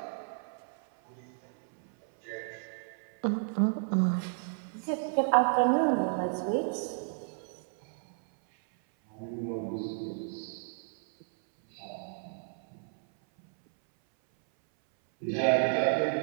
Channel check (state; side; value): silent; left; 57 dB below the other